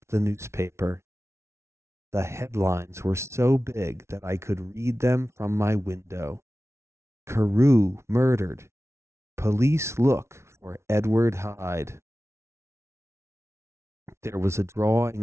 the newspaper. The headlines were so big that I could read them from my window. Carew murdered. Police look for Edward Hyde. There was a drawing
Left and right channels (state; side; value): late; left; 0.13 ms